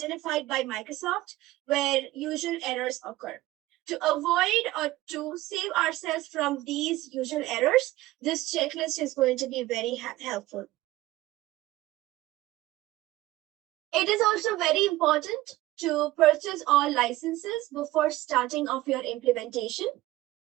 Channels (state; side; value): quieter; left; 17.3 dB